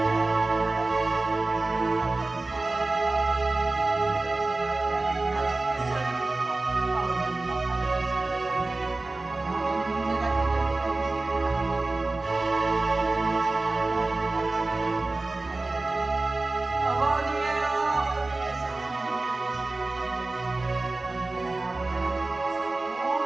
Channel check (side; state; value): left; quieter; 3.2 dB